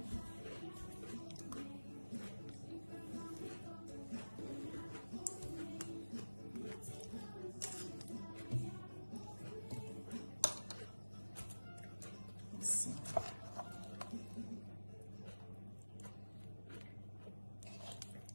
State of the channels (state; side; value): inverted; both; correlation -1.00